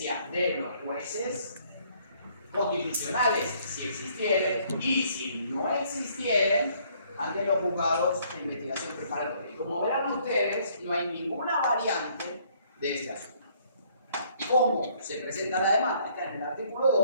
de los jueces constitucionales, si existieren, y si no existieren, ante los juzgados de investigación preparatoria. Y como verán ustedes, no hay ninguna variante de este asunto. ¿Cómo se presenta la demanda? Está en el artículo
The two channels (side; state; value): both; inverted; correlation -0.63